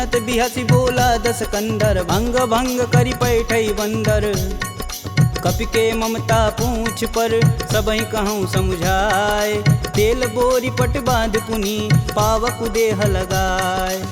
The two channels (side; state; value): both; identical; correlation 1.00